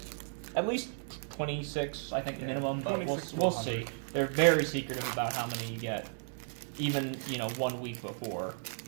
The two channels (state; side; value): silent; left; digital silence